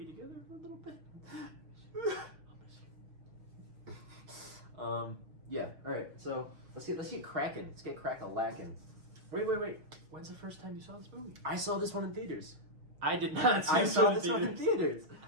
together for a little bit. I'll miss you. Yeah. All right. So let's get cracking. Let's get crack-a-lacking. Wait. When's the first time you saw this movie? I saw this one in theaters. I did not see I this saw one this in one in theaters. theaters.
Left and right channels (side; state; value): left; late; 6.4 ms